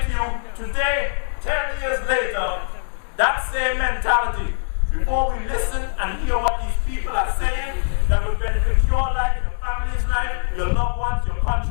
to you today, 10 years later, that same mentality. Before we listen and hear what these people are saying that will benefit your life, your family's life, your loved ones, your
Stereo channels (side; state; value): right; silent; 61 dB below the other